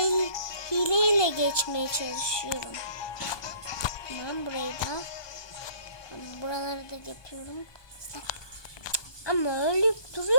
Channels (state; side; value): late; right; 1.2 ms